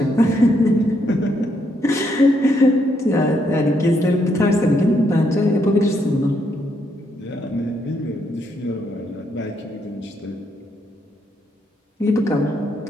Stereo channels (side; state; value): both; normal; correlation 0.75